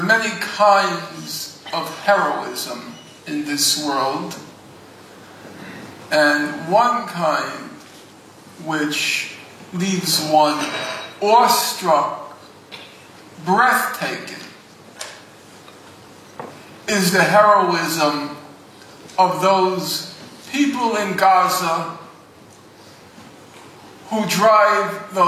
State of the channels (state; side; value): identical; both; correlation 1.00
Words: many kinds of heroism in this world, and one kind which leaves one awestruck, breathtaking, is the heroism of those people in Gaza who drive